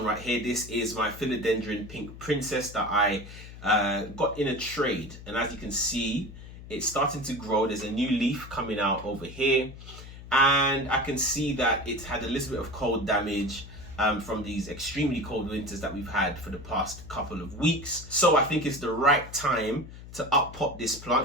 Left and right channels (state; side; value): noise; left; hum, 15 dB below the sound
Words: right here. This is my Philodendron Pink Princess that I got in a trade. And as you can see, it's starting to grow. There's a new leaf coming out over here. And I can see that it's had a little bit of cold damage from these extremely cold winters that we've had for the past couple of weeks. So I think it's the right time to up-pot this plant